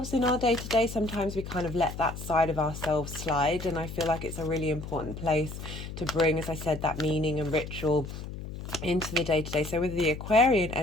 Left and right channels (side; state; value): left; noise; hum, 9 dB below the sound